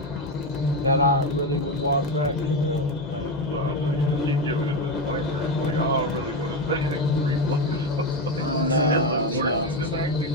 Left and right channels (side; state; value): both; normal; correlation 0.13